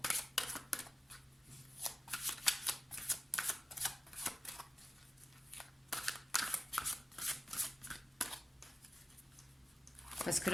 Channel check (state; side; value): normal; both; correlation 0.93